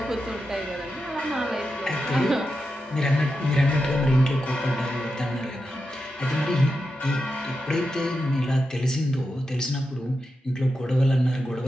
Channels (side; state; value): both; normal; correlation 0.89